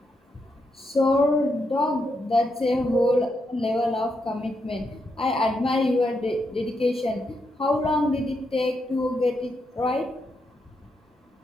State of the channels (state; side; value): normal; both; correlation 0.82